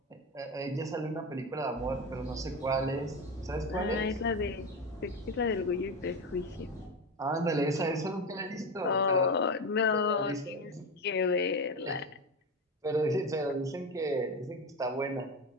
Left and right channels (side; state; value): both; normal; correlation 0.20